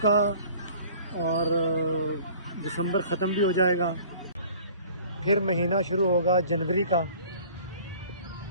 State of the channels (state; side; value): inverted; both; correlation -0.49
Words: और दिसंबर ख़त्म भी हो जाएगा, फिर महीना शुरू होगा जनवरी का।